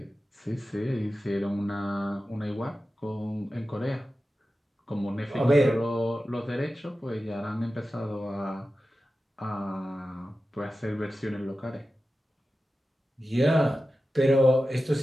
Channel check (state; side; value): normal; both; correlation 0.94